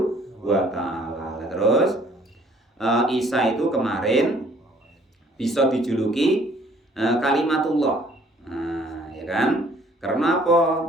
wa ta'ala. Terus Isa itu kemarin bisa dijuluki kalimatullah, ya kan? Karena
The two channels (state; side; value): normal; both; correlation 0.59